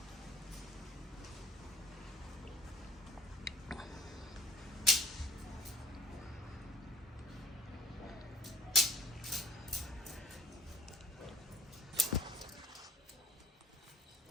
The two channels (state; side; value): normal; both; correlation 0.53